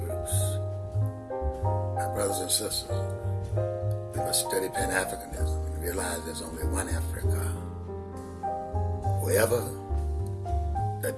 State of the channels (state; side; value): identical; both; correlation 1.00